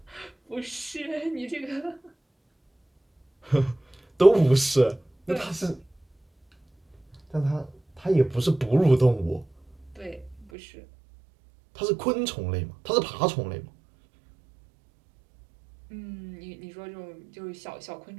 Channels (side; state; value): left; drops out; at 10.5 s